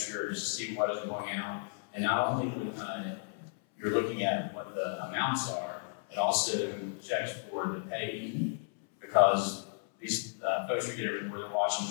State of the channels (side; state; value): right; silent; 55 dB below the other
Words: to see what is going out, and not only you're looking at what the amounts are, it also checks for the pay, because these folks you get everywhere, they're watching